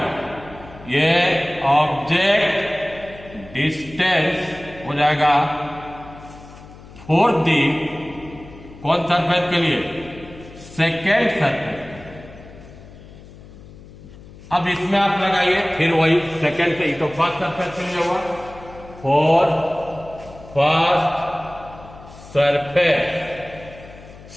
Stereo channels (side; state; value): left; noise; hum, 19 dB below the sound